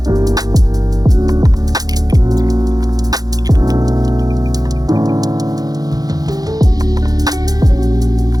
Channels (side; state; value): left; late; 0.18 ms